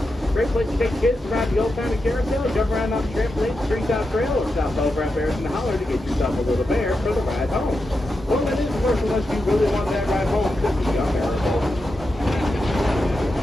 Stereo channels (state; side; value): normal; both; correlation 0.88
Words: Great place to take kids around the old-timey carousel, jump around on the trampoline, Treetop Trail, or stop over at Bears in the Holler to get yourself a little bear for the ride home. Well, that is the first unless you really want that ride home cookie on there.